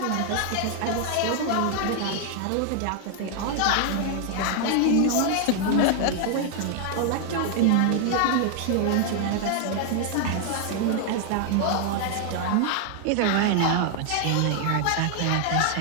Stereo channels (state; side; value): different; both; correlation 0.00